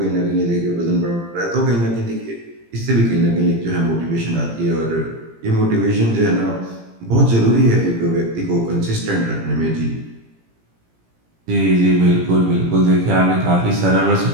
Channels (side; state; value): left; late; 17 ms